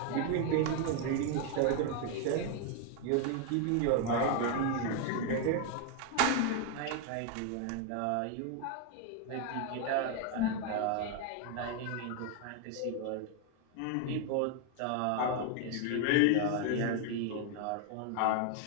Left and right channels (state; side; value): different; both; correlation 0.01